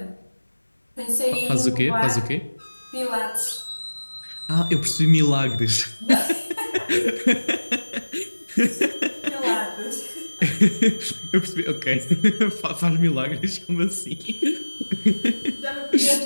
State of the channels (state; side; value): inverted; both; correlation -1.00